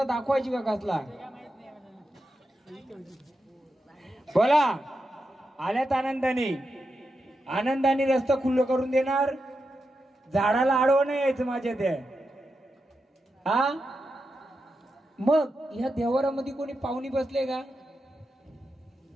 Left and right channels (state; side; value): normal; both; correlation 0.88